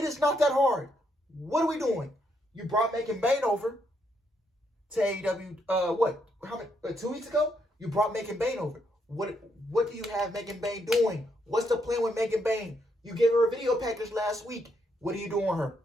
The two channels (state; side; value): normal; both; correlation 0.76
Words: is not that hard. What are we doing? You brought Megan Bayne over to AEW, 2 weeks ago? You brought Megan Bayne over. What do you have Megan Bayne doing? What's the plan with Megan Bayne? You gave her a video package last week. What are you doing with her?